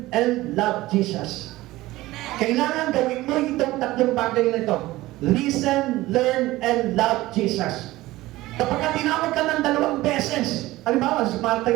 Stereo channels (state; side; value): quieter; left; 17.8 dB